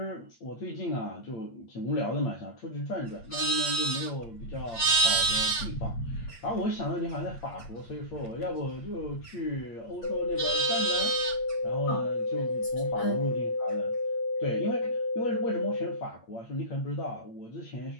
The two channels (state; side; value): late; right; 8.7 ms